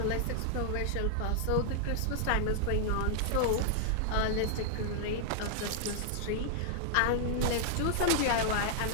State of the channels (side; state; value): both; different; correlation -0.01